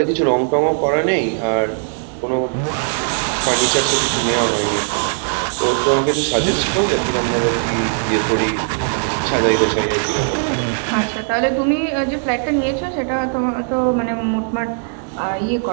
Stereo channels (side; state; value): left; silent; digital silence